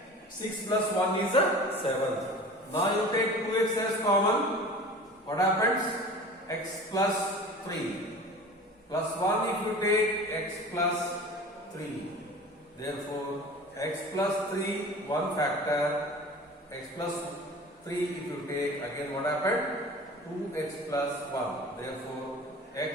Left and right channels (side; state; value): both; normal; correlation 0.39